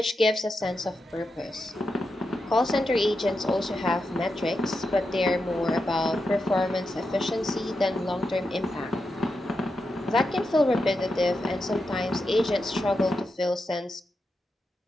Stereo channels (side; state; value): both; normal; correlation 0.87